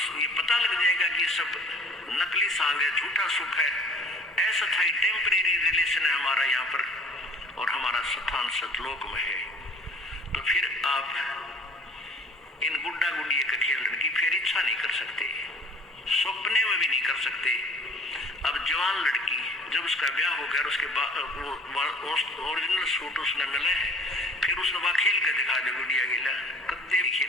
ये पता लग जाएगा कि सब नकली सांग है, झूठा सुख है, ऐसा था टेम्परेरी रिलेशन है हमारा यहाँ पर, और हमारा स्थान सतलोक में है, तो फिर आप इन गुड्डा गुड़िया के खेलने की फिर इच्छा नहीं कर सकते, सपने में भी नहीं कर सकते। अब जवान लड़की जब उसका ब्याह हो गया, उसके बाद ओरिजिनल सूट उसने मिले हैं, फिर उसने वह खेल कर दिखा दे गुड़िया गिला, कद्दे भी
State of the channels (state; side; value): normal; both; correlation 0.49